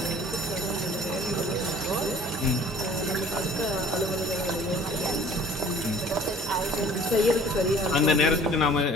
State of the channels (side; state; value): both; normal; correlation 0.50